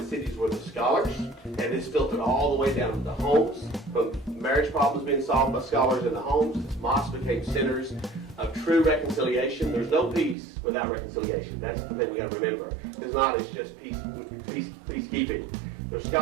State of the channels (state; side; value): drops out; left; at 10.4 s